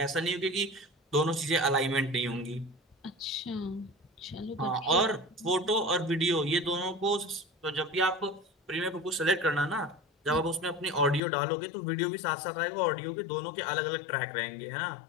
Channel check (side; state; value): right; drops out; at 11.2 s